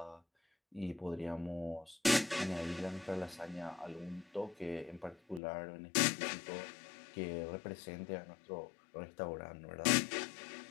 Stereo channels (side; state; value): right; drops out; at 5.4 s